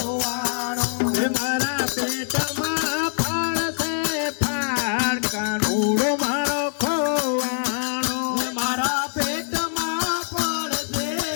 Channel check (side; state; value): right; silent; 63 dB below the other